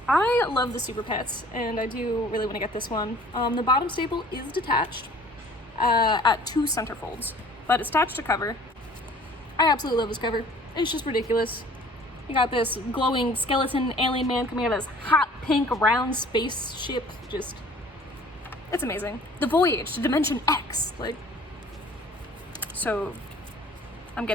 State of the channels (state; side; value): normal; both; correlation 0.51